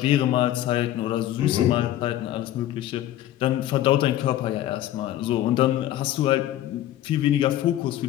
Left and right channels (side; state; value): right; quieter; 13.2 dB